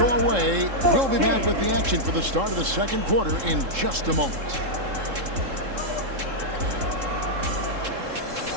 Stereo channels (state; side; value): late; left; 3.7 ms